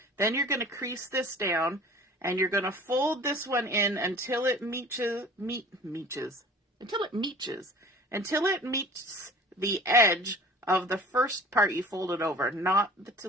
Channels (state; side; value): normal; both; correlation 0.44